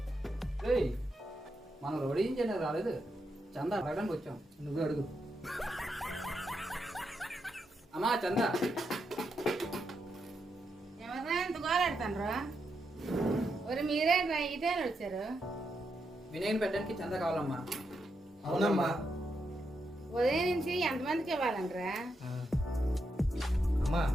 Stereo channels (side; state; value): both; normal; correlation 0.83